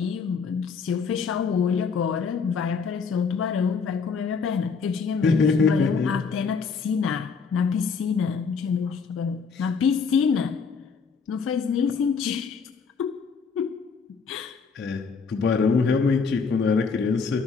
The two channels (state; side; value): quieter; right; 5.4 dB